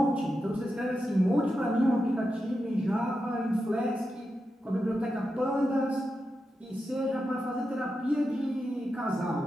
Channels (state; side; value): normal; both; correlation 0.89